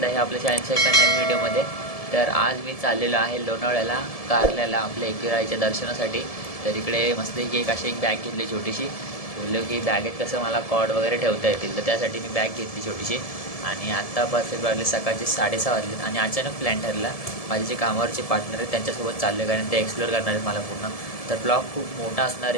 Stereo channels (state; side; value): late; right; 1.7 ms